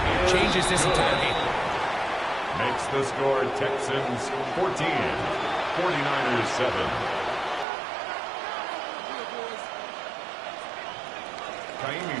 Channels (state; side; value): drops out; left; at 7.7 s